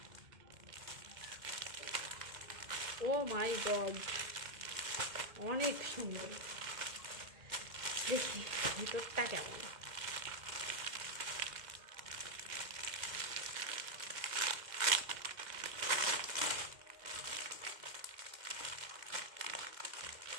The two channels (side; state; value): left; late; 2.1 ms